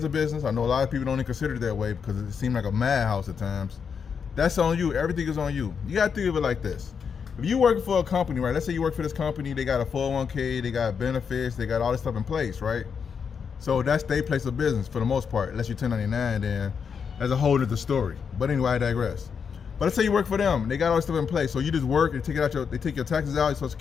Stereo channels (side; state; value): right; quieter; 6.5 dB